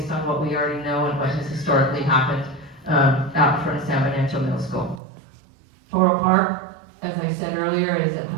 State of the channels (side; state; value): left; drops out; at 5.0 s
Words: on what we already know and what has historically happened out in front of San Bernardino Middle School. Toro Park, as I said earlier, is